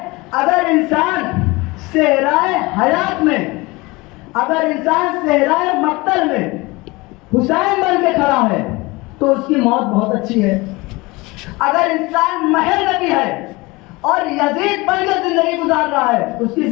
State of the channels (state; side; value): quieter; right; 23.3 dB